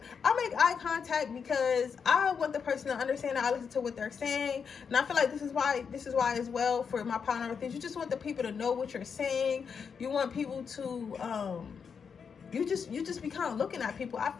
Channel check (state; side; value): quieter; right; 6.3 dB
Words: I make eye contact because I want the person to understand that I listen to what they're saying. And I feel like this is why as well, for my partner with things, you just want the people to know what you're saying. You want people to you just be kind of looking at people. I